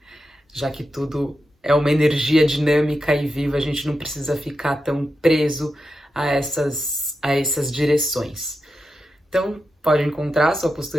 Já que tudo é uma energia dinâmica e viva, a gente não precisa ficar tão preso a essas direções. Então, pode encontrar a sua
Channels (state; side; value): normal; both; correlation 0.89